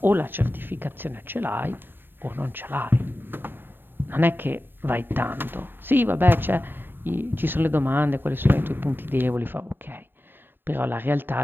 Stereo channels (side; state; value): left; late; 0.097 ms